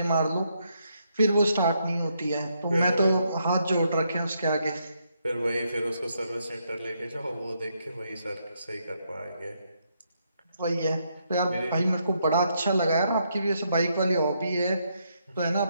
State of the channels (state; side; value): inverted; both; correlation -0.77